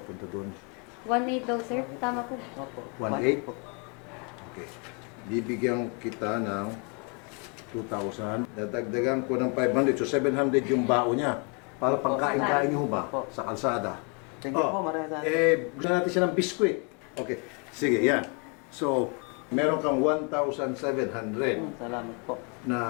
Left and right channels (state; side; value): quieter; right; 35.8 dB